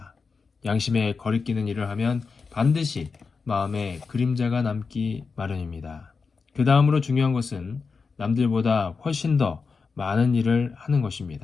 양심에 거리끼는 일을 하면 반드시 마음에 그림자가 남기 마련입니다. 그 다음으로 중요한 것은 남들보다 훨씬 더 많은 일을 하는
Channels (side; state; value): right; quieter; 4.9 dB